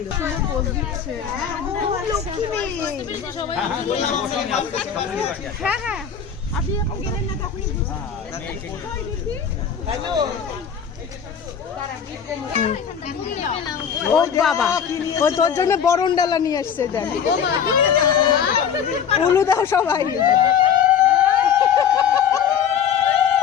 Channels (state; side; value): quieter; right; 7.8 dB